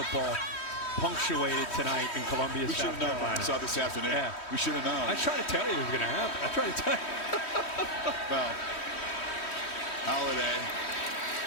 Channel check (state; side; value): late; right; 3.1 ms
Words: punctuated tonight in Columbia, we South should have known. Carolina. We saw this afternoon. Yeah. We should have known. I tried to tell you it was going to happen. I tried to tell you. Well, Holiday,